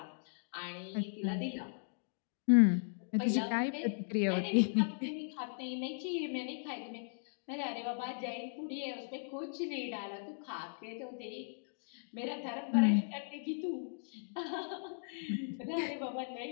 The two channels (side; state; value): right; silent; digital silence